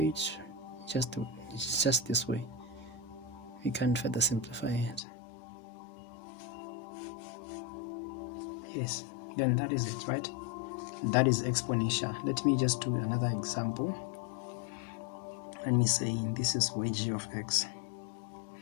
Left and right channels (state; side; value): drops out; right; at 5.0 s